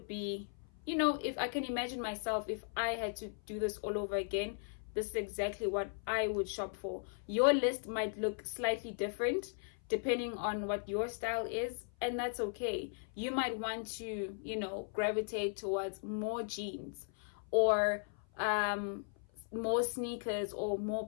be, you know, if I can imagine myself, if I had to do this all over again, this is exactly what I would shop for. Your list might look slightly different depending on what your style is, and that's okay. You might want to, you know, gravitate towards more jeans or more sneakers or more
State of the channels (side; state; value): right; silent; 53 dB below the other